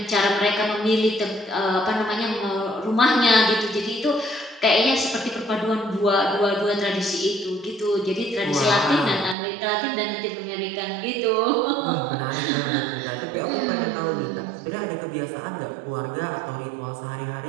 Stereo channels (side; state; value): left; drops out; at 9.3 s